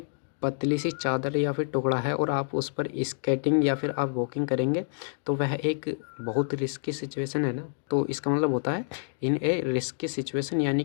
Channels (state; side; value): silent; right; digital silence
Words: पतली सी चादर या फिर टुकड़ा है और आप उस पर स्केटिंग या फिर आप वॉकिंग करेंगे, तो वह एक बहुत रिस्की सिचुएशन है ना, तो इसका मतलब होता है इन ए रिस्की सिचुएशन, यानी